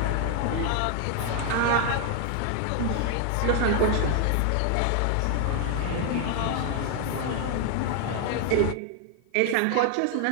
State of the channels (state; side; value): different; both; correlation 0.00